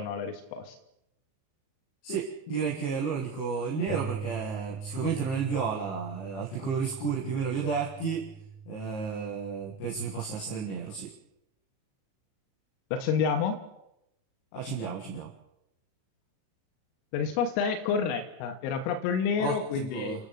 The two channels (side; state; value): right; late; 38 ms